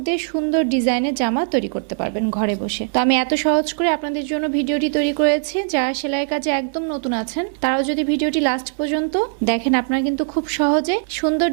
দিয়ে সুন্দর ডিজাইনের জামা তৈরি করতে পারবেন ঘরে বসে। তো আমি এত সহজ করে আপনাদের জন্য ভিডিওটি তৈরি করেছি। যারা সেলাই কাজে একদম নতুন আছেন তারাও যদি ভিডিওটি লাস্ট পর্যন্ত দেখেন, আপনারা কিন্তু খুব সহজে সুন্দর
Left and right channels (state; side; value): silent; left; 65 dB below the other